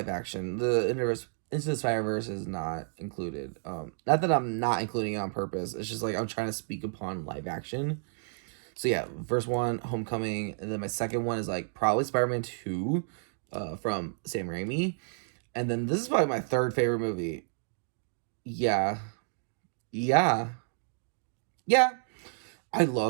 action. The Into the Spider-Verse is not included. Not that I'm not including it on purpose. It's just like I'm trying to speak upon live action. So yeah, first one, Homecoming, and then my second one is like probably Spider-Man 2. From Sam Raimi. And then this is probably my 3rd favorite movie. Yeah. I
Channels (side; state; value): left; silent; digital silence